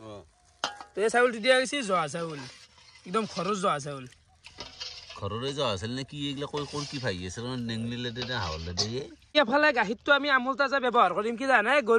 তে চাউল দিয়া গৈছে জহা চাউল একদম খৰচ জহা চাউল ঘৰৰে যোৱা আছিল নে কি এইগিলা কৈ কি ভাই আছে নেংলিলে দে হাওলে দে এফালে গাখীৰটো আমি আমুল তাজা ব্যৱহাৰ কৰিম কি জানা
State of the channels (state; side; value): identical; both; correlation 1.00